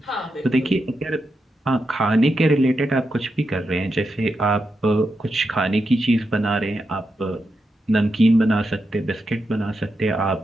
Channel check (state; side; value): normal; both; correlation 0.86